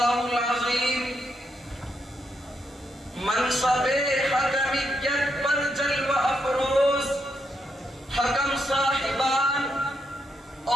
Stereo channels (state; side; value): normal; both; correlation 0.80